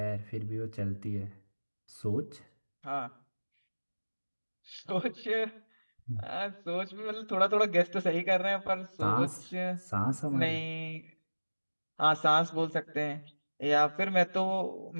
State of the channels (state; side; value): inverted; both; correlation -1.00